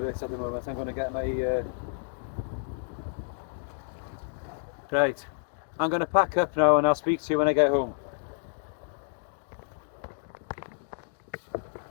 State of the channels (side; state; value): right; silent; digital silence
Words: it at the moment. I'm going to get my... Right. I'm going to pack up now and I'll speak to you when I get home.